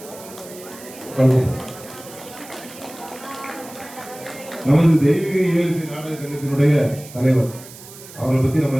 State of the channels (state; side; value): noise; right; hiss, 17 dB below the sound